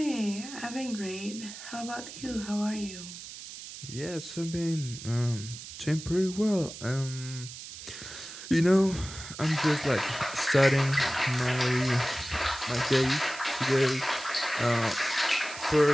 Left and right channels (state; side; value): noise; right; hiss, 12 dB below the sound